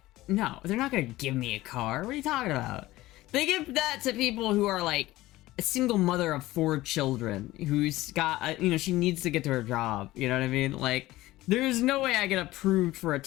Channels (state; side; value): quieter; right; 17.4 dB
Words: No, they're not gonna give me a car. What are you talking about? They give that to people who are like a single mother of 4 children who's got, you know, she needs to get to her job. You know what I mean? Like, there's no way I get approved for a